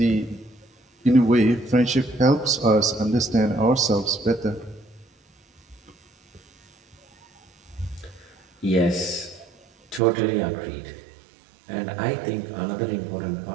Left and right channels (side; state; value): left; drops out; at 10.0 s